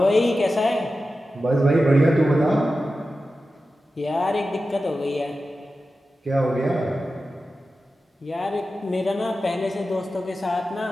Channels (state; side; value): normal; both; correlation 0.93